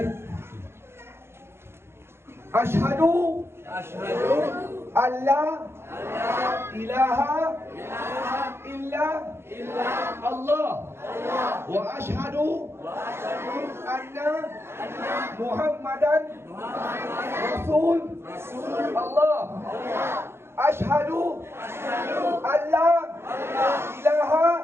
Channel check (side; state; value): left; late; 0.12 ms